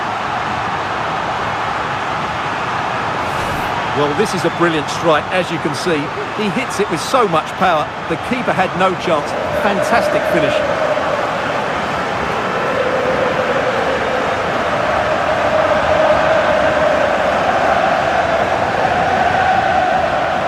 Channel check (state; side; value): identical; both; correlation 1.00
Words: Well, this is a brilliant strike, as you can see. He hits it with so much power. The keeper had no chance. Fantastic finish.